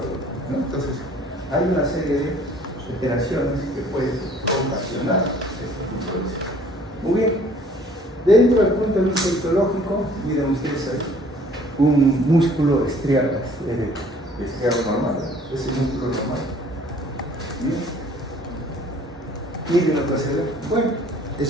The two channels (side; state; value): both; normal; correlation 0.55